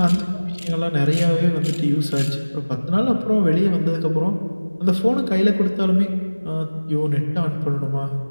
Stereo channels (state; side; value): inverted; both; correlation -1.00